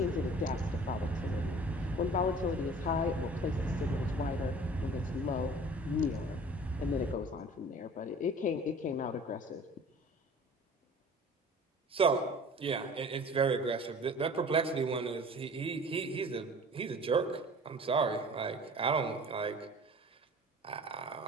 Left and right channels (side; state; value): both; normal; correlation 0.45